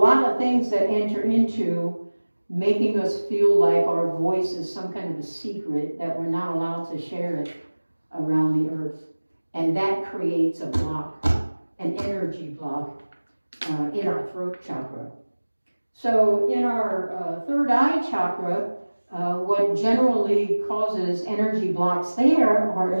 of things that enter into making us feel like our voice is some kind of a secret, that we're not allowed to share it around the earth. And that creates a block, an energy block in our throat chakra. So in our third eye chakra, what generally causes energy blocks there are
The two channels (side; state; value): both; inverted; correlation -1.00